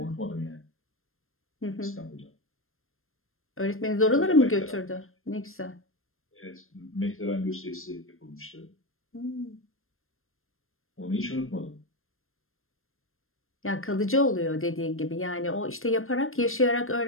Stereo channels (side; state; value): right; late; 0.61 ms